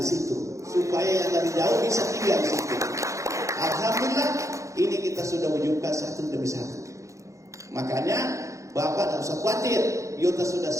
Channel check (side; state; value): left; late; 0.15 ms